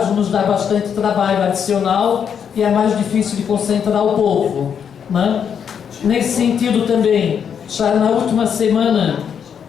Nos dá bastante trabalho adicional e é mais difícil de concentrar o povo, né? Nesse sentido também, já na última semana,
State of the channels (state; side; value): quieter; right; 7.7 dB